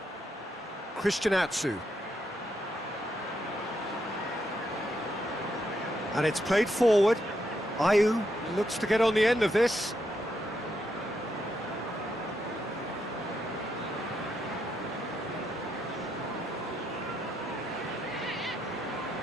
Christian Atsu. And it's played forward. Ayew looks to get on the end of this.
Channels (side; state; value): both; normal; correlation 0.80